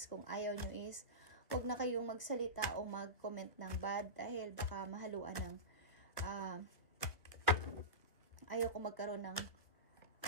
Kung ayaw nyo is, huwag na kayong magsalita o mag-comment ng bad dahil baka mahaluan ng ayaw ko magkaroon ng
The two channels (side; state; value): right; late; 1.1 ms